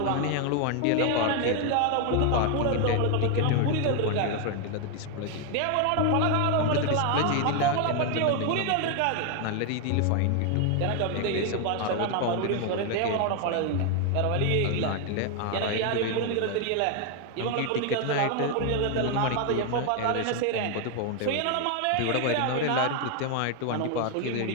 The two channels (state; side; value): different; both; correlation 0.01